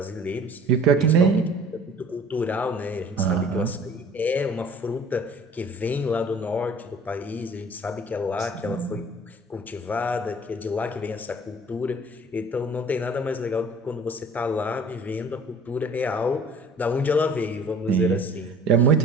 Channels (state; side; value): normal; both; correlation 0.49